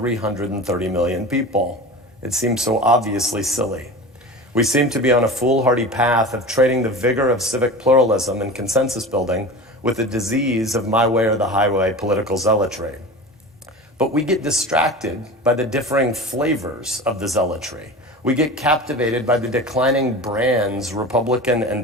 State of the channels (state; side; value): normal; both; correlation 0.33